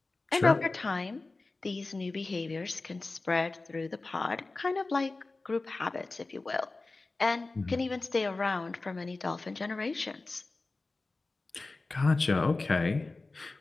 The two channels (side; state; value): right; quieter; 3.4 dB